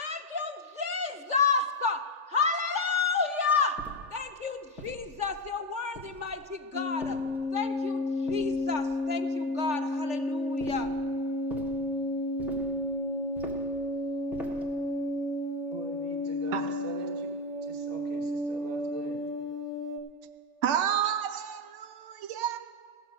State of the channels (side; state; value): left; late; 3.4 ms